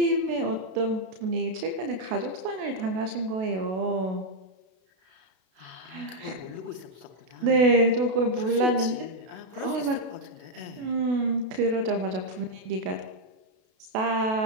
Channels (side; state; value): left; late; 32 ms